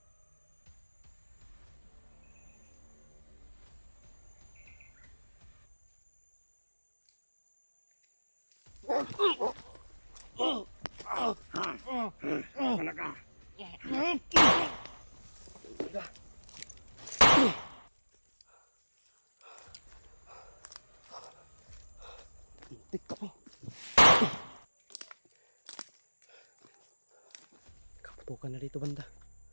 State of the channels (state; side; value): inverted; both; correlation -1.00